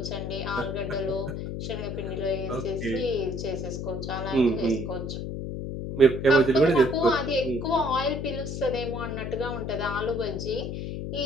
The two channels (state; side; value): noise; left; hum, 5 dB below the sound